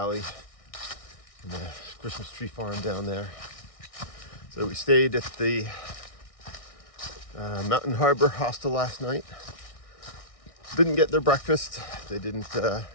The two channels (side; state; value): right; late; 1.6 ms